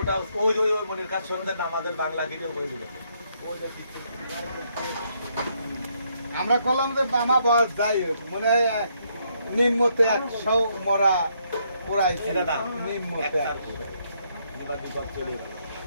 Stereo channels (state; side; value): inverted; both; correlation -0.73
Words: ওই ওই ওই মনের কাজ শুনতে আমাদের বাংলা ভিডিও করে দিবে ওই যে আমরা কলম যে বামা বয়স যাই হোক মনে হয় নিম্নতে 100 মরা পোড়াইছে নিম্নতে চলে গেল